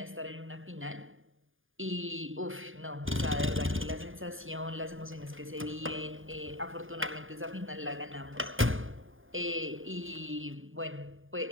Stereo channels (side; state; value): left; late; 0.59 ms